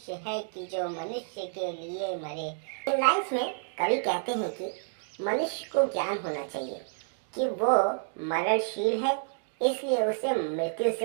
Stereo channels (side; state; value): left; silent; digital silence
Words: है कि जो मनुष्य के लिए मरे। इन लाइन्स में कवि कहते हैं कि मनुष्य को ज्ञान होना चाहिए कि वो मरणशील है, इसलिए उसे मृत्यु